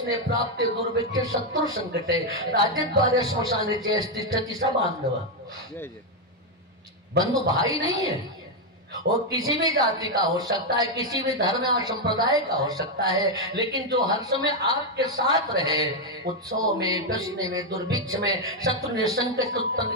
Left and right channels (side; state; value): both; normal; correlation 0.02